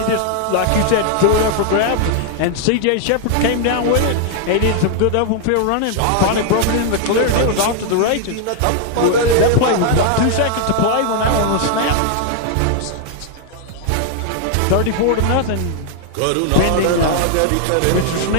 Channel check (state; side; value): different; both; correlation 0.00